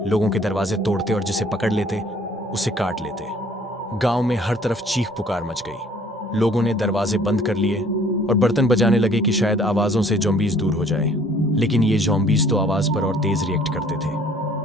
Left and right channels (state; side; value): normal; both; correlation 0.57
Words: लोगों के दरवाजे तोड़ते और जिसे पकड़ लेते उसे काट लेते। गांव में हर तरफ चीख पुकार मच गई। लोगों ने दरवाजे बंद कर लिए और बर्तन बजाने लगे कि शायद आवाजों से ज़ॉम्बीज़ दूर हो जाए, लेकिन ये ज़ॉम्बीज़ तो आवाज पर और तेज रिएक्ट करते थे।